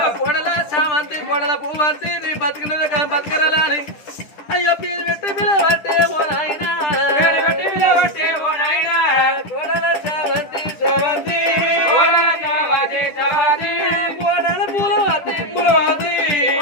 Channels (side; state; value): right; late; 10 ms